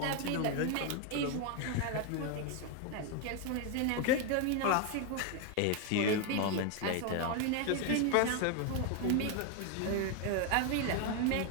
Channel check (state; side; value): different; both; correlation 0.01